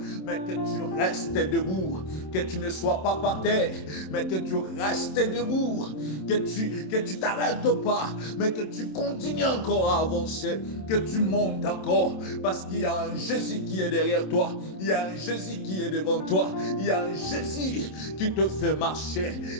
mais que tu restes debout. Que tu ne sois pas par terre, mais que tu restes debout. Que tu t'arrêtes pas, mais que tu continues encore à avancer. Que tu montes encore, parce qu'il y a un Jésus qui est derrière toi. Il y a un Jésus qui est devant toi. Il y a un Jésus qui te fait marcher.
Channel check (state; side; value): late; right; 27 ms